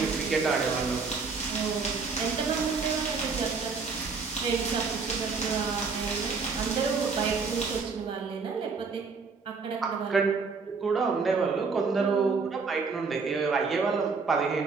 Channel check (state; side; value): quieter; left; 4.8 dB